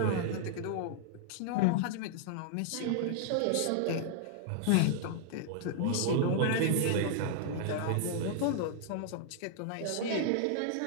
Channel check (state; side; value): different; both; correlation -0.01